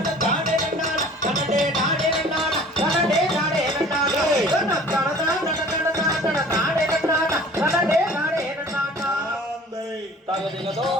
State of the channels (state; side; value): normal; both; correlation 0.47